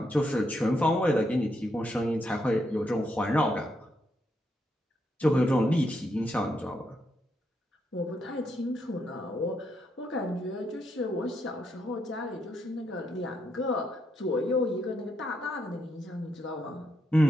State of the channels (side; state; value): both; normal; correlation 0.79